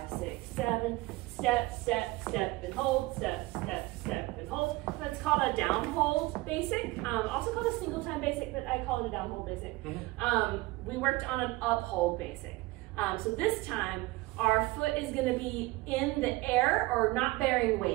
6, 7, step, step, step, and hold, step, step, step, and hold. That's called a down hold basic, also called a single time basic, but I call it a down hold basic. We worked on an up hold basic. So this time, our foot is going to be in the air or not bearing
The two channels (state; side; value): quieter; left; 20.8 dB